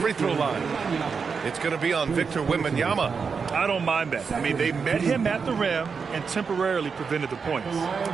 throw line. It's going to be on Victor Wembanyama. I don't mind that. I mean, they met him at the rim and temporarily prevented the points.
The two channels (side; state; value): left; quieter; 5.6 dB